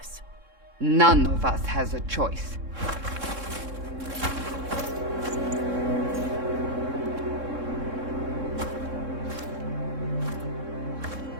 None of us has a choice.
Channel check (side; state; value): left; late; 3.7 ms